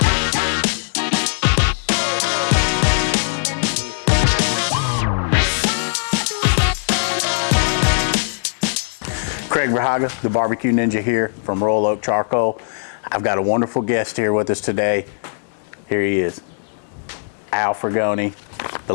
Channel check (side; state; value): right; silent; 65 dB below the other